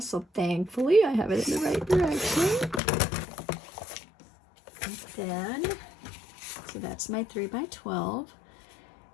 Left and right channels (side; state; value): right; drops out; at 2.8 s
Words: So thankfully I have it in the right direction. And then, so that's my 3x12.